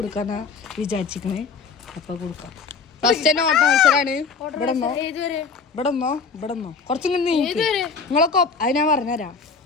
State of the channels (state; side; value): quieter; right; 5.0 dB